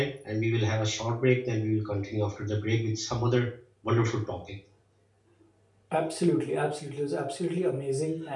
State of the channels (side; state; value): both; identical; correlation 1.00